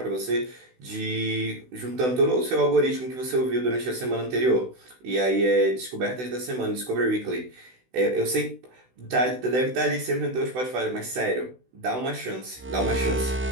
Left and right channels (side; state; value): left; late; 16 ms